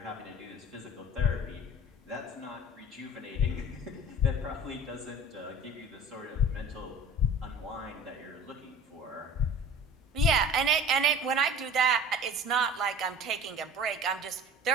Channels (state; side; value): normal; both; correlation 0.42